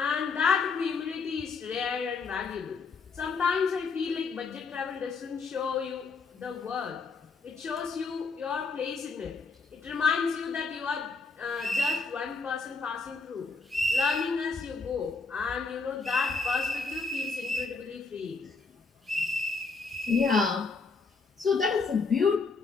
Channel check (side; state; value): right; quieter; 4.4 dB